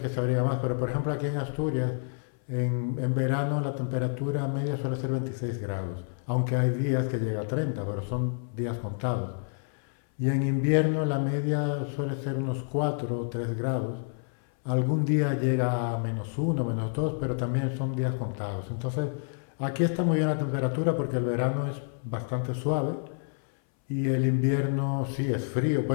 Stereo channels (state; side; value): silent; right; 59 dB below the other